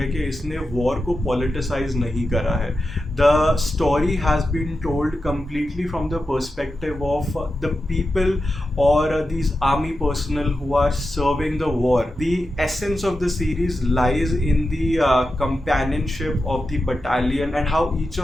कि इसने वॉर को पॉलिटिसाइज नहीं करा है. The story has been told completely from the perspective of the people or these army personnel who are serving the war. The essence of the series lies in the companionship of the battalion and how each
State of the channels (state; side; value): normal; both; correlation 0.90